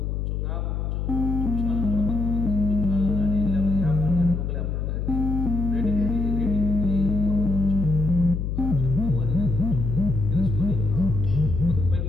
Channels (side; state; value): left; noise; hum, 2 dB below the sound